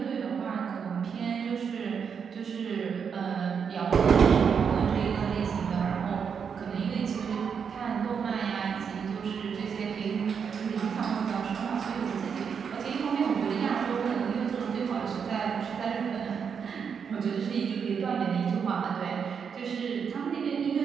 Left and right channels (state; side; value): quieter; left; 6.7 dB